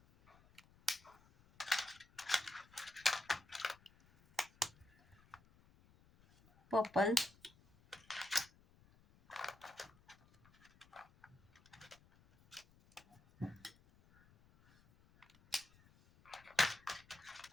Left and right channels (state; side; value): noise; left; rumble, 27 dB below the sound